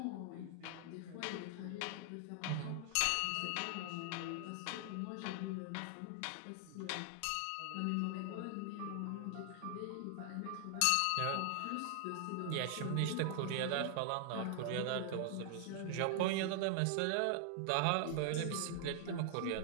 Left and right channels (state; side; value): different; both; correlation 0.00